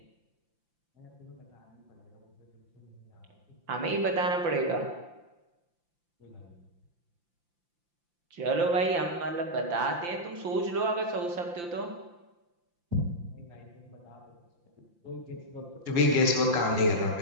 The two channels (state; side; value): late; left; 5.8 ms